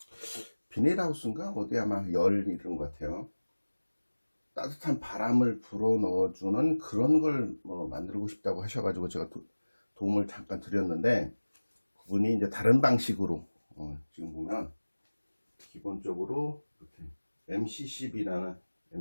비닐하우스인가 어디 아마 열 이런 것 같아요. 따뜻한 바람을 불어 넣어주는 그런 걸 만들고 싶다고 하셔가지고 제가 도움을 잠깐 드렸는데, 그분이 이제 다른 방식으로 지금 보면 기본적으로 이렇게 MC12라는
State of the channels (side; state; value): both; inverted; correlation -1.00